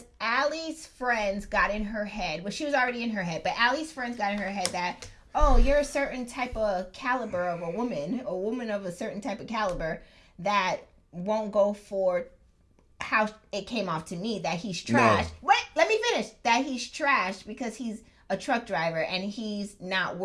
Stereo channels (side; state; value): both; identical; correlation 1.00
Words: Allie's friends got in her head. Well, she was already in her head. But Allie's friends got in her head that, oh, you're a certain type of caliber of a woman of a certain type of caliber that won't go for how it came off to me, that he's trash. No. Wait, let me finish. That he's trash because he's a truck driver and he's not